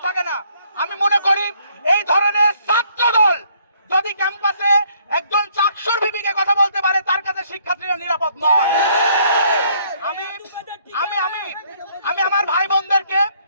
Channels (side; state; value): both; inverted; correlation -0.66